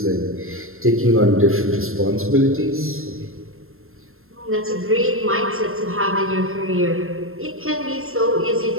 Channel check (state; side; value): late; left; 0.61 ms